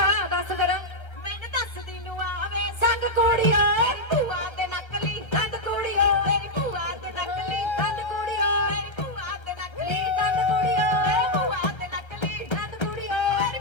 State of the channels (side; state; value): right; late; 1.3 ms